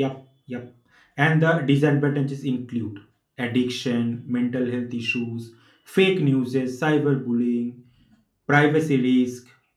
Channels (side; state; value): both; identical; correlation 1.00